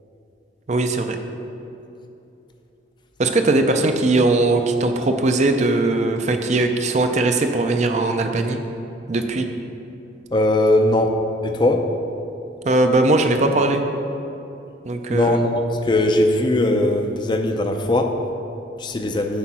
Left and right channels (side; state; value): both; normal; correlation 0.55